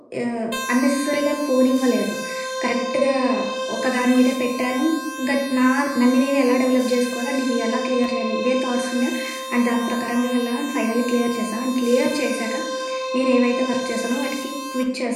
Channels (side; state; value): both; identical; correlation 1.00